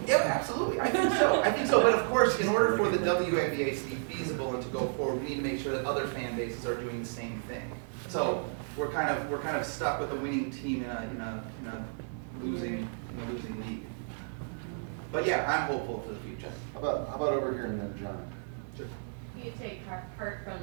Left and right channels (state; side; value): silent; left; digital silence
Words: yeah, absolutely. I think so. But of course, in order for the WNBA to be feasible and to go forward, we need to make sure that other fan bases are doing the same thing. So we're kind of stuck with a winning team in a losing league. But yeah, I'm hopeful for the future. How about over here and then John? Sure. You take part from